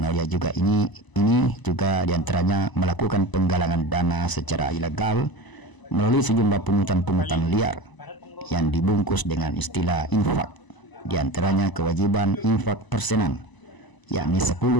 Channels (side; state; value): right; late; 1.0 ms